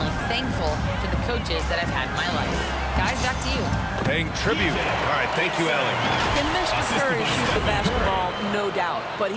thankful for the coaches that I've had in my life. Guys, back to you. Paying tribute. All right, thank you, Allie. Can Mr. Curry shoot the basketball? No doubt. But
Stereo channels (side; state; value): both; identical; correlation 1.00